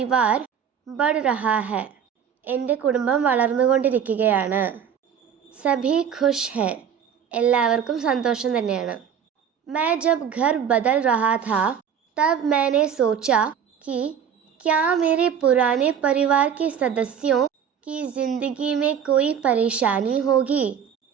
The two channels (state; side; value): quieter; left; 8.0 dB